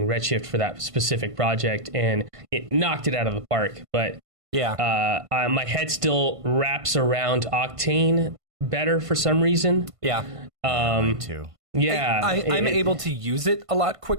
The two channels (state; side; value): late; left; 1.5 ms